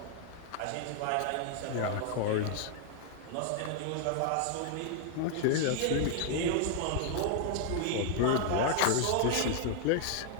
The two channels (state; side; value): different; both; correlation 0.00